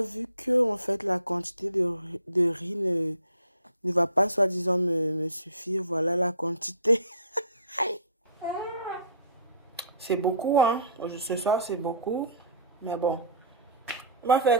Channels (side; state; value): both; inverted; correlation -0.46